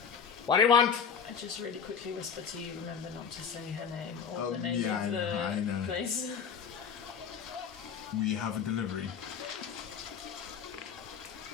"What do you want?" I just really quickly whisper to you, remember not to say her name or Oh, the name yeah, of I the know. place. We have a delivery.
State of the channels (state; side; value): quieter; right; 6.8 dB